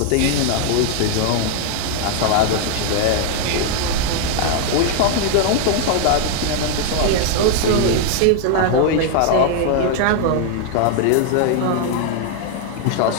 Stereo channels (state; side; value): different; both; correlation 0.00